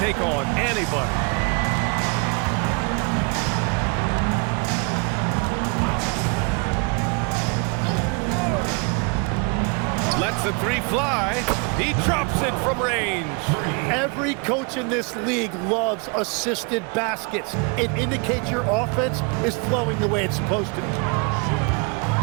on anybody. Lets the 3 fly. He drops it from range. Every coach in this league loves assisted baskets. It indicates your offense is flowing the way it's supposed to.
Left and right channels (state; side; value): quieter; left; 33.3 dB